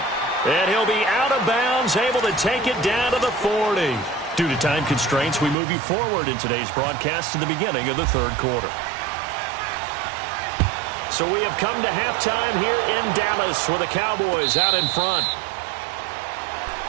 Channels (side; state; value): left; drops out; at 5.6 s